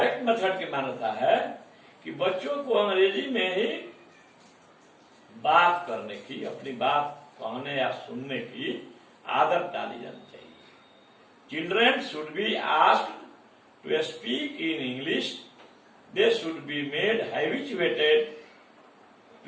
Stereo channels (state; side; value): identical; both; correlation 1.00